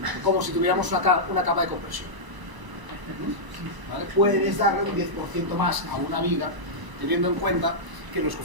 Como si tuviéramos una capa de compresión. ¿Vale? Puedes darle un 10% más a una viga, teniendo en cuenta que los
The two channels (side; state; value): left; late; 1.0 ms